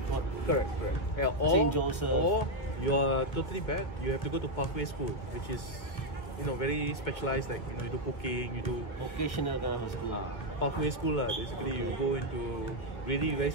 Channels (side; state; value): right; late; 1.6 ms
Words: Correct. Yeah, St. Joseph. Or you are totally bad, you have to go to Pathway School, which is very specialized, like you do cooking, you do vocational kind of school. Pathway School basically you go into really very